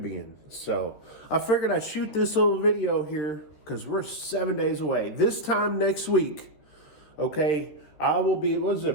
So I figured I'd shoot this little video here because we're 7 days away. This time next week, okay, I will be, what is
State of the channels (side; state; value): right; late; 14 ms